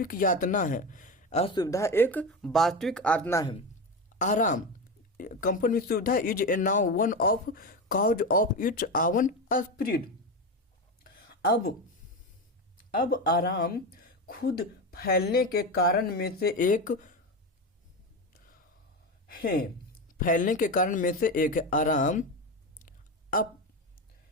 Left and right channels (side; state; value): both; normal; correlation 0.19